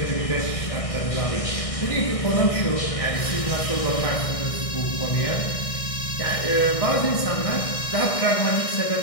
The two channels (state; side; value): late; right; 1.6 ms